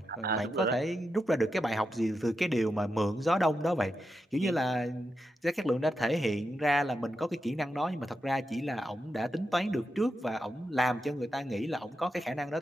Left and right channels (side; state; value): both; normal; correlation 0.87